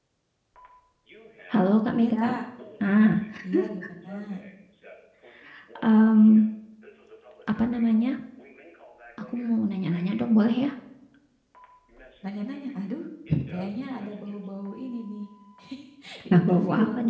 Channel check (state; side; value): identical; both; correlation 1.00